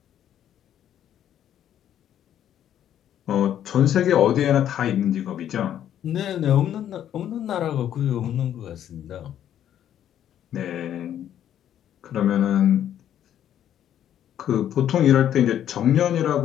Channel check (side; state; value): right; quieter; 10.6 dB